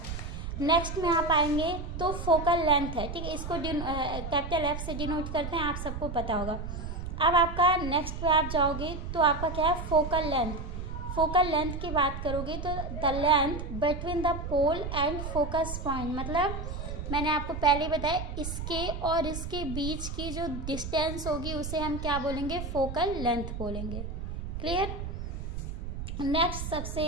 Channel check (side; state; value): right; noise; rumble, 6 dB below the sound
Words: नेक्स्ट में आप आएंगे तो फोकल लेंथ है, ठीक है, इसको कैपिटल एफ से डिनोट करते हैं, आप सबको पता होगा। अब आपका नेक्स्ट पे आप जाओगे तो आपका क्या है, फोकल लेंथ। फोकल लेंथ की बात करोगे तो the length between the pole and focus point, मतलब मैंने आपको पहले बताया इसके और इसके बीच की जो डिस्टेंस होगी उसे हम क्या बोलेंगे, फोकल लेंथ बोलेंगे। क्लियर। नेक्स्ट सबसे